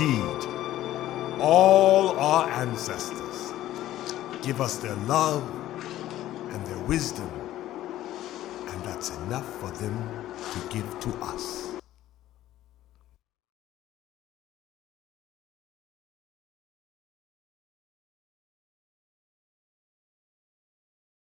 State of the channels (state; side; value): quieter; right; 13.9 dB